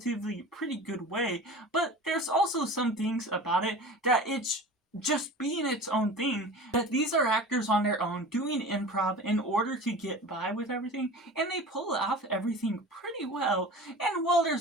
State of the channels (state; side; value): normal; both; correlation 0.36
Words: pretty good way. But there's also some things about it that it's just being its own thing, that these are actors on their own doing improv in order to get by with everything, and they pull off everything pretty well. And while